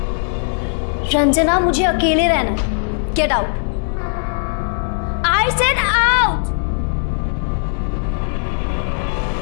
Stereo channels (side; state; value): right; silent; 67 dB below the other